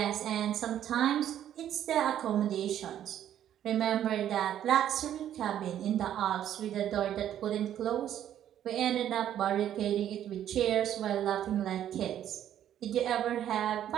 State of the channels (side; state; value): left; quieter; 10.8 dB